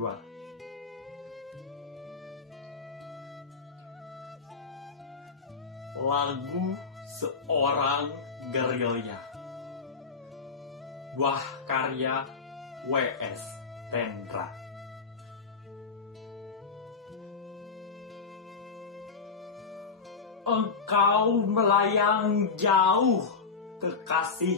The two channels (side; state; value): right; quieter; 4.8 dB